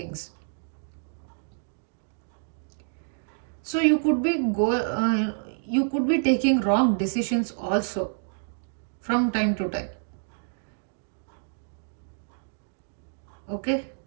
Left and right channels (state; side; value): silent; left; digital silence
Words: So you could be taking wrong decisions also from time to time. Okay.